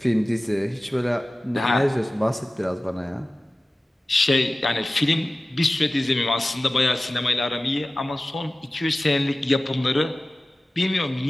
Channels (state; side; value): normal; both; correlation 0.97